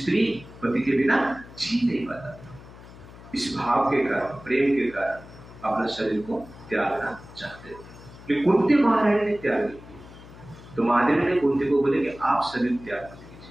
पति के बिना जी नहीं पाता था। इस भाव के कारण, प्रेम के कारण अपना शरीर को त्यागना चाहते थे। कुंती महारानी ने त्याग नहीं किया। तो माद्री ने कुंती को बोले कि आप शरीर त्याग मत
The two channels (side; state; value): left; noise; hum, 18 dB below the sound